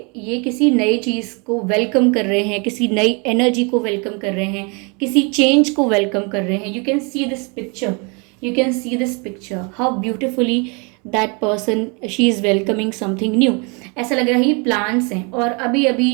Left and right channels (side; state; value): left; quieter; 32.2 dB